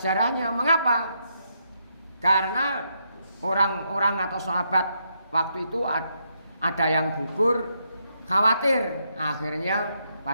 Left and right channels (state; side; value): inverted; both; correlation -0.78